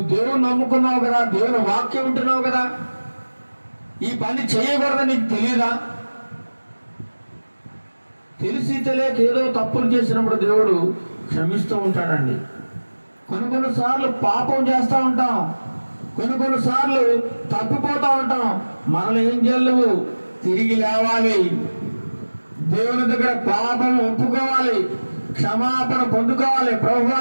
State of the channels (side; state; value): both; inverted; correlation -1.00